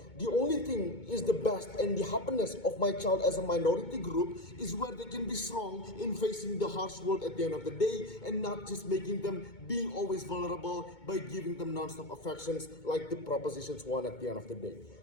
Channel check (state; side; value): late; right; 2.2 ms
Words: The only thing is the best and the happiness of my child as a minority group is where they can be strong in facing the harsh world at the end of the day, and not just making them being always vulnerable by giving them non-stop affections like the propositions one at the end of the day.